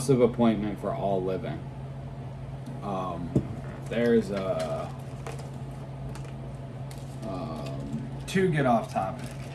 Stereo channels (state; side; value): identical; both; correlation 1.00